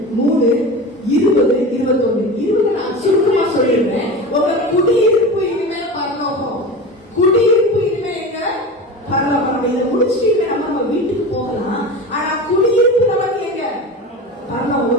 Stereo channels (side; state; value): both; normal; correlation 0.30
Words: 3:20-21 நான் சுருக்கமா சொல்லிடுறேன். உங்க குடியிருப்பு இனிமே பரலோகம். குடியிருப்பு இனிமே எங்க? பரலோகம். இதை முடிச்சுட்டு நம்ம வீட்டுக்கு போகலாம். ஆனா குடியிருப்பு நமக்கு எங்க? பரலோகம்.